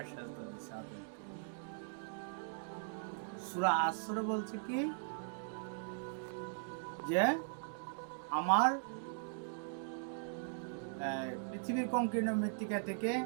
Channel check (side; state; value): left; silent; digital silence